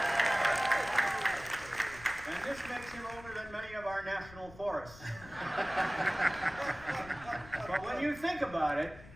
And this makes him older than many of our national forests. But when you think about it,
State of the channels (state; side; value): noise; left; rumble, 18 dB below the sound